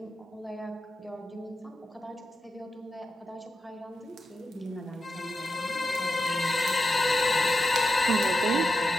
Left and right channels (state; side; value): normal; both; correlation 0.88